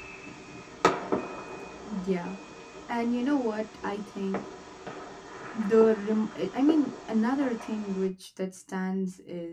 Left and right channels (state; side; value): identical; both; correlation 1.00